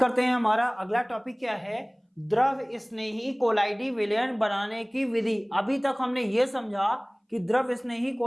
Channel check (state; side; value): identical; both; correlation 1.00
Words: हैं, हमारा अगला टॉपिक क्या है, द्रव स्नेही कोलाइडी विलयन बनाने की विधि। अभी तक हमने ये समझा कि द्रव स्नेही